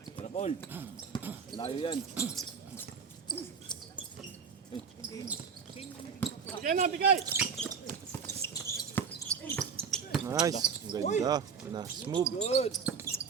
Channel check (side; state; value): left; quieter; 6.2 dB